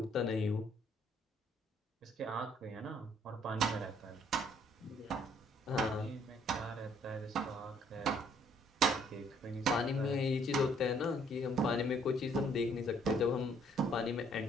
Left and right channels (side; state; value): both; normal; correlation 0.64